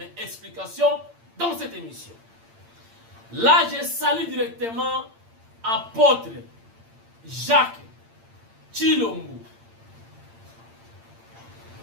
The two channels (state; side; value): late; left; 8.8 ms